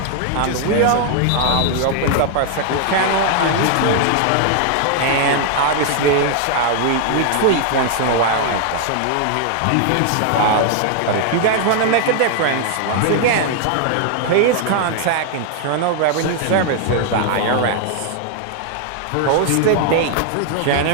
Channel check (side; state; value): both; different; correlation 0.00